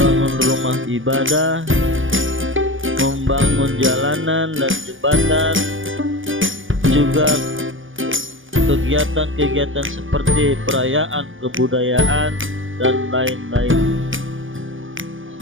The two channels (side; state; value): left; late; 0.57 ms